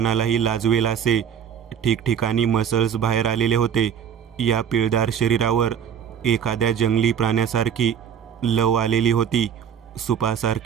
लाजवेल असे ठिकठिकाणी मसल्स बाहेर आलेले होते. या पिळदार शरीरावर एखाद्या जंगली प्राण्यासारखी लव आलेली होती.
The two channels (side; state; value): left; quieter; 8.2 dB